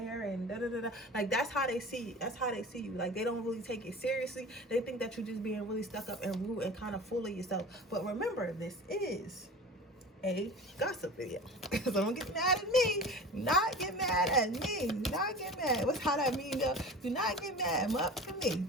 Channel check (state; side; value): normal; both; correlation 0.36